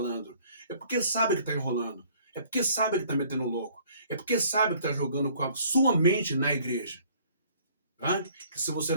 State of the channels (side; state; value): both; inverted; correlation -0.57